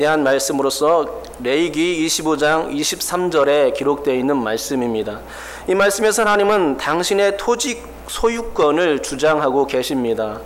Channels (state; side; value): identical; both; correlation 1.00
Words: 말씀으로서 레위기 25장 23절에 기록되어 있는 말씀입니다. 이 말씀에서 하나님은 당신의 토지 소유권을 주장하고 계십니다.